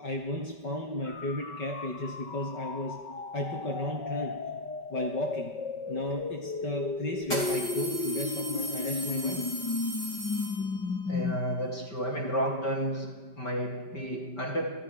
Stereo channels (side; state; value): right; late; 5.1 ms